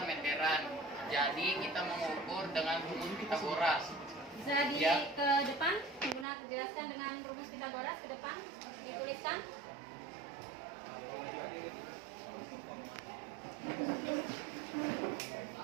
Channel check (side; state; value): left; drops out; at 6.2 s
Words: meteran. Jadi kita mengukur dengan rumus Pitagoras. Bisa ke depan, jelaskan dengan rumus Pitagoras ke depan, dituliskan.